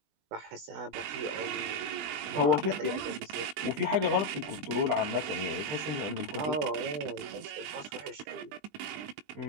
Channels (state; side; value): late; left; 20 ms